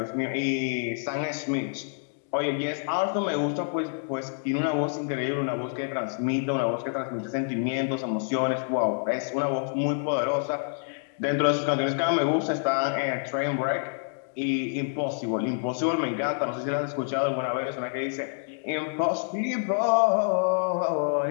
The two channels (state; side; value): silent; right; digital silence